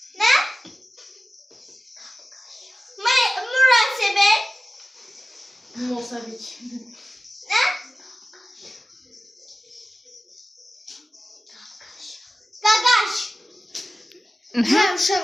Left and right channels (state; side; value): normal; both; correlation 0.95